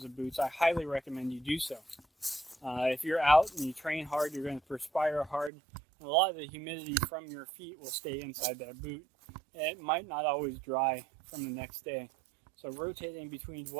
of boots, I highly recommend you do so. If you're out and you train hard, you're going to perspire hard, and a lot of the humidity from your feet will stay inside that boot. And it might not always dry from the next day. So rotating between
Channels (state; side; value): drops out; left; at 5.5 s